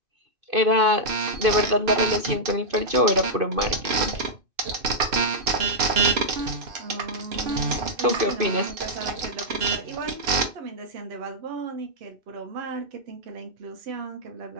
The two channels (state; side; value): late; left; 2.5 ms